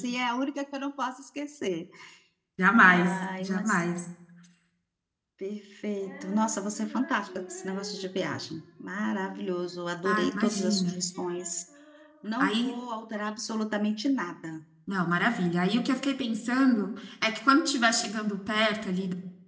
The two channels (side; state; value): both; identical; correlation 1.00